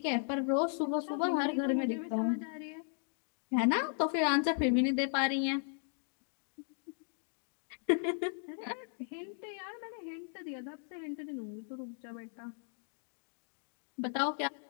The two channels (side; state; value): right; silent; 54 dB below the other